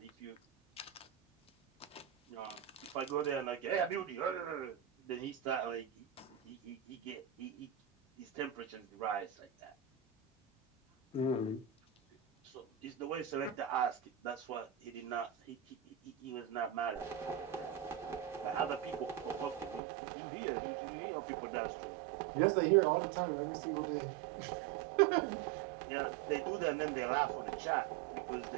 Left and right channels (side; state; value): left; drops out; at 19.8 s